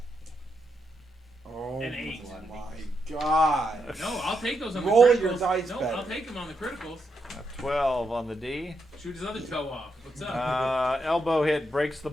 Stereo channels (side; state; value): both; normal; correlation 0.82